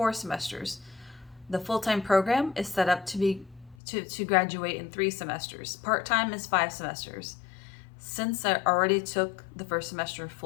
semesters. The full-time program is set up to graduate in 3 semesters. Part-time is 5 semesters. Since I already took the first semester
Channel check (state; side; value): drops out; right; at 3.8 s